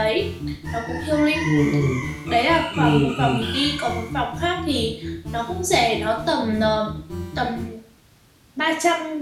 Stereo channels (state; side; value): identical; both; correlation 1.00